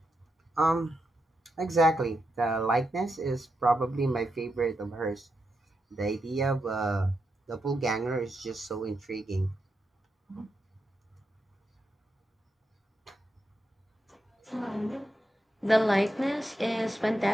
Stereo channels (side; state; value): both; normal; correlation 0.85